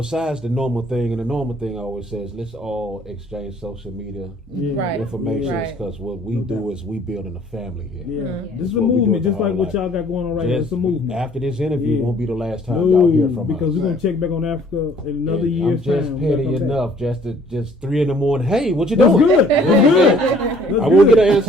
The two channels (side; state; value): both; normal; correlation 0.58